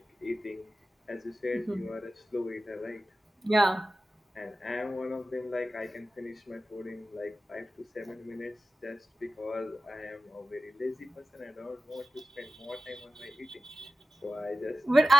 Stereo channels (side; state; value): both; normal; correlation 0.94